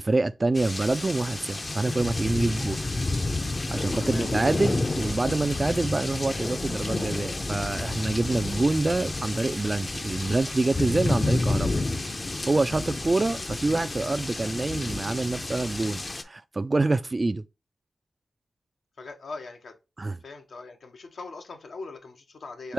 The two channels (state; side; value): normal; both; correlation 0.96